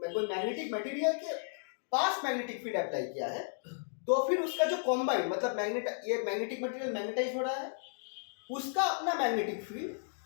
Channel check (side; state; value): right; silent; digital silence